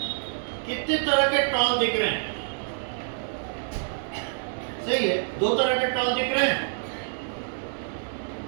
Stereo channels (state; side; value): silent; left; 60 dB below the other